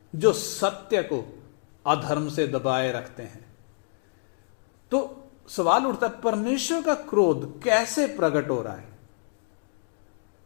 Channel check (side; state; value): right; silent; digital silence